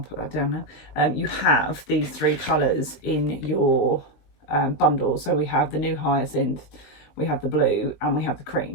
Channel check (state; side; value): late; right; 20 ms